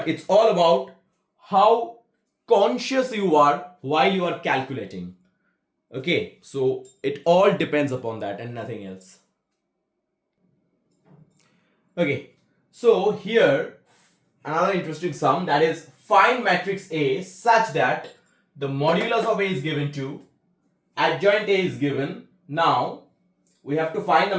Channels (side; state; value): both; identical; correlation 1.00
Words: it's all about how conscious you are while you are calculating. Okay, so it all depends upon that and nothing else. Okay, so here another interesting sum, that is find matrix A such that the modulus of A is given to, adjoint A is given. Now we have to find the